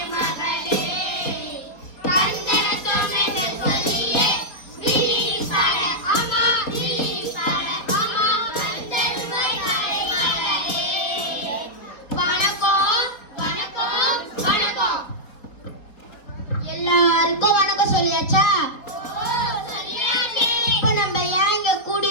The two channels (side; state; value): right; late; 4.4 ms